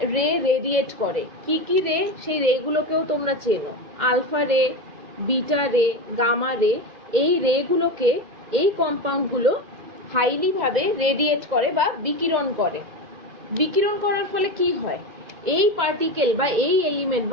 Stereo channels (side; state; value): left; late; 2.0 ms